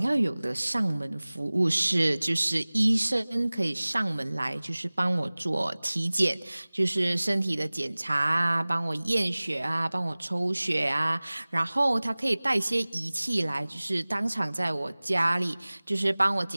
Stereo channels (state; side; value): inverted; both; correlation -1.00